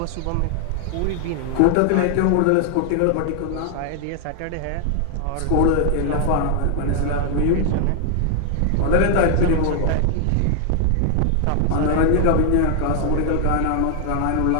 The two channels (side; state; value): both; different; correlation 0.00